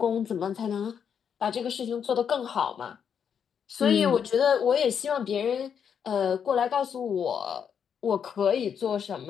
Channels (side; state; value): right; quieter; 7.6 dB